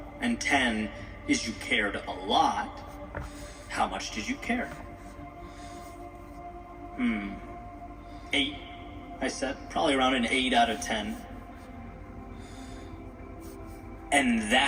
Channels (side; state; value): both; identical; correlation 1.00